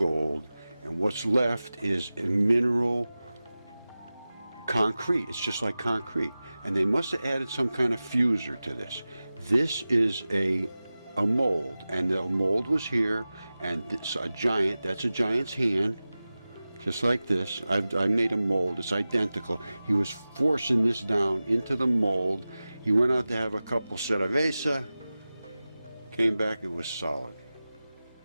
and what's left is a mineral concrete. It's just like concrete, and they must have added some kind of fuser to this. This is a mold, and the mold was here, and it's a giant. That's a giant's hand. Just like this. I made a mold. It's identical. He was forcing this down into the mold. He went out to have a couple cerveza. Came back, it was solid.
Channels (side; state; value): both; inverted; correlation -0.96